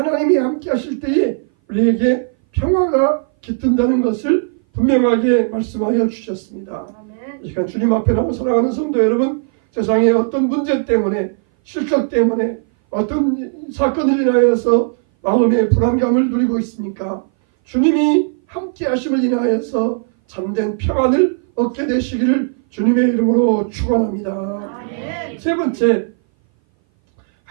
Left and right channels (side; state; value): left; silent; 59 dB below the other